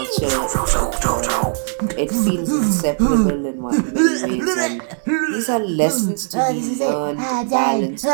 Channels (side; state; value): left; silent; digital silence